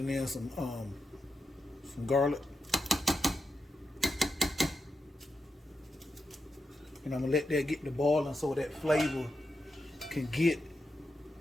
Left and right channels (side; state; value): both; normal; correlation 0.87